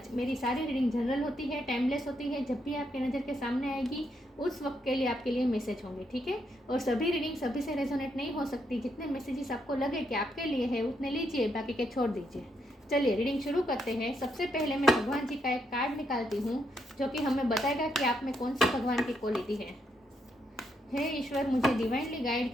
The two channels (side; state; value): both; normal; correlation 0.78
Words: मेरी सारी रीडिंग जनरल होती है, टाइमलेस होती है। जब भी आपके नज़र के सामने आएगी उस वक्त के लिए आपके लिए मैसेज होंगे, ठीक है। और सभी रीडिंग सभी से रेजोनेट नहीं हो सकती। जितने मैसेजेस आपको लगे कि आपके लिए है उतने लीजिए, बाकी के छोड़ दीजिए। चलिए रीडिंग शुरू करते हैं। सबसे पहले मैं भगवान जी का एक कार्ड निकालती हूँ जो कि हमें बताएगा कि आप में कौन सी भगवान की क्वालिटी है। हे ईश्वर, मुझे डिवाइनली गाइड